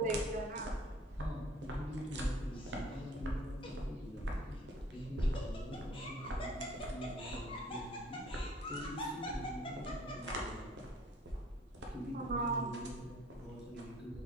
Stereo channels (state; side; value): normal; both; correlation 0.55